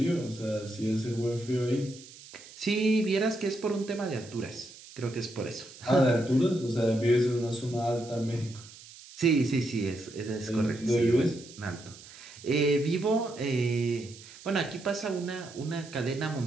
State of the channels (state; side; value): noise; right; hiss, 19 dB below the sound